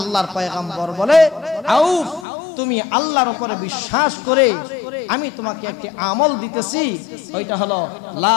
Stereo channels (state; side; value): drops out; right; at 2.2 s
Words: পয়গম্বর বলে, আউফ, তুমি আল্লাহর উপরে বিশ্বাস করে আমি তোমাকে একটি আমল দিতেছি, ওইটা হলো লা